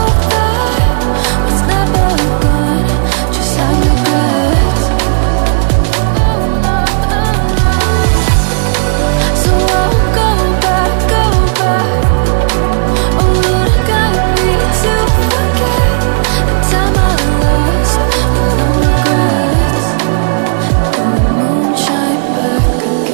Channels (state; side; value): silent; left; digital silence